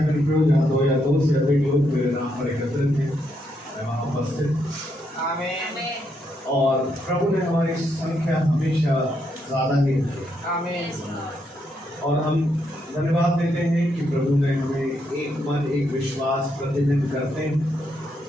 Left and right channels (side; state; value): both; normal; correlation 0.78